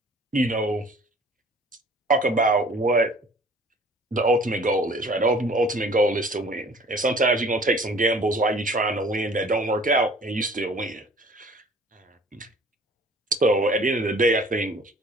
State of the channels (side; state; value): both; normal; correlation 0.51